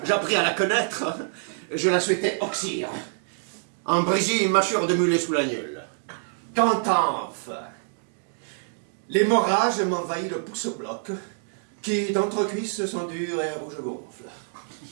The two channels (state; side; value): silent; left; digital silence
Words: J'appris à la connaître. Je la souhaitais oxyre. En Brésil, mâchure de mulet sous l'agnole. Quand enfin, l'hémorragie m'envahit le pouce-bloc, qui d'entrecuisse sont durs et rouge gonfle.